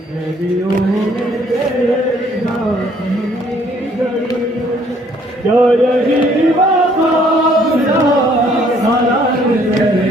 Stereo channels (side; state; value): both; normal; correlation 0.63